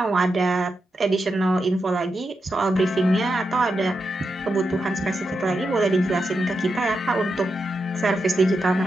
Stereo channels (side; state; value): both; normal; correlation 0.87